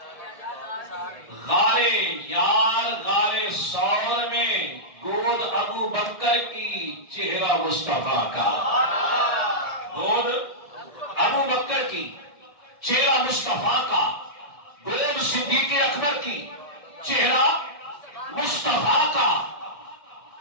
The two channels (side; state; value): right; late; 1.6 ms